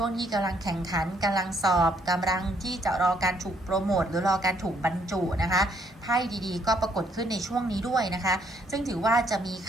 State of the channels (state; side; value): normal; both; correlation 0.69